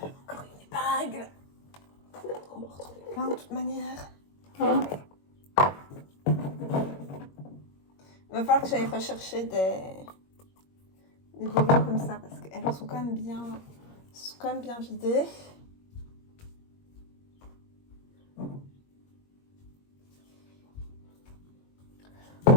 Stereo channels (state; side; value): late; right; 21 ms